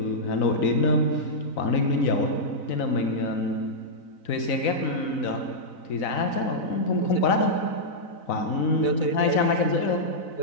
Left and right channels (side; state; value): right; late; 4.0 ms